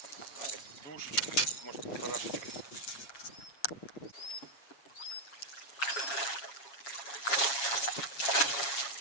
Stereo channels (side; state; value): right; late; 7.3 ms